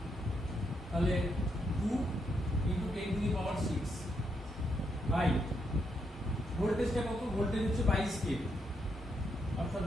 তাহলে 2 into 10 to the power 6 by ভোল্টেজটা কত, ভোল্টেজ হচ্ছে 22 কেভি, অর্থাৎ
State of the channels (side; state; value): both; normal; correlation 0.79